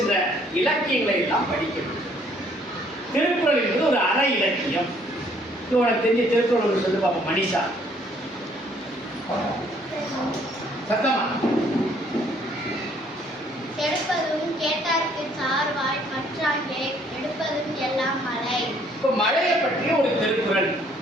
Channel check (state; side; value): normal; both; correlation 0.63